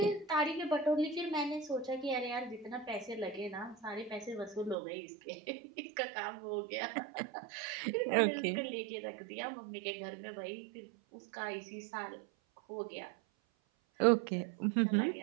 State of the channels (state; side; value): drops out; left; at 4.8 s